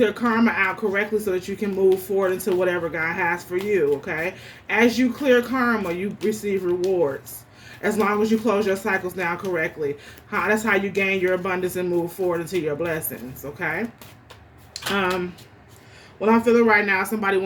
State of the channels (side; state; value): both; identical; correlation 1.00